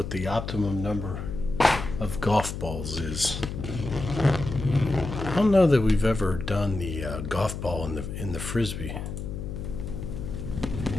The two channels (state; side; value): noise; left; hum, 6 dB below the sound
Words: the optimum number of golf balls is. I don't know that we've ever done the golf ball in the frisbee.